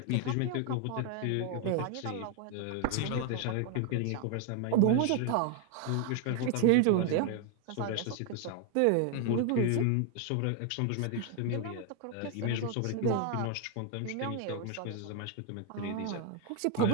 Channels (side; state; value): both; different; correlation 0.01